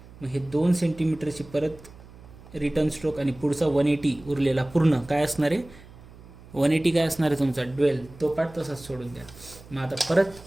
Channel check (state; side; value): noise; right; hum, 20 dB below the sound